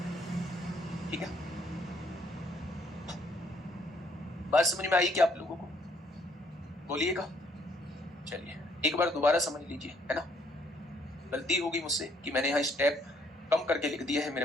ठीक है, बात समझ में आई क्या आप लोगों को? बोलिएगा। चलिए एक बार दोबारा समझ लीजिए, है ना। गलती होगी मुझसे कि मैंने यहाँ स्टेप कम करके लिख दिया है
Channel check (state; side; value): normal; both; correlation 0.67